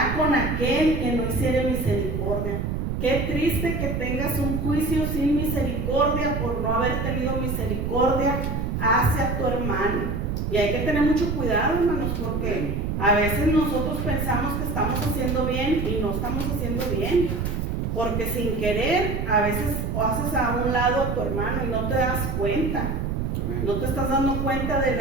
con aquel que no hiciere misericordia. Qué triste que tengas un juicio sin misericordia por no haber tenido misericordia hacia tu hermano. Y hay que tener mucho cuidado, hermanos, porque a veces nosotros pensamos que estamos haciendo bien y no estamos haciendo bien. Porque sin querer, a veces haces a un lado a tu hermano y no te das cuenta. No te estás dando cuenta del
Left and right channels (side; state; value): right; noise; rumble, 1 dB below the sound